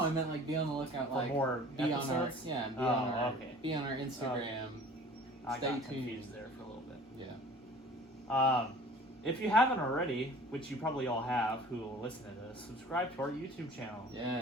meant like be on the lookout, For like more be episodes? on our be on our Okay. Instagram. I Stay got tuned. confused there for a little bit. Yeah. If you haven't already, which you probably all have who will listen to this, subscribe to our YouTube channel.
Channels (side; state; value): both; normal; correlation 0.46